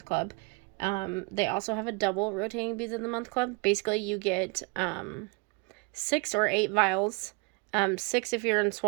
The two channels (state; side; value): quieter; left; 31.3 dB